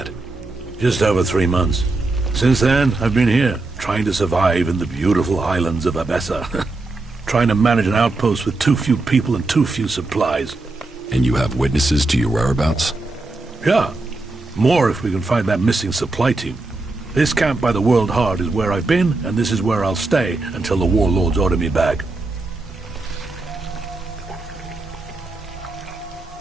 Just over 3 months. Since then, I've been here, trying to survive in the beautiful islands of Abessa. Trying to manage an outpost with too few people and too few supplies. And you have witnesses to your whereabouts? Yeah. More if we can find that missing supply team. This camp by the World Heart is where I've been, and this is where I'll stay until the warlords order me back.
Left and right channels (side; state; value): left; quieter; 3.2 dB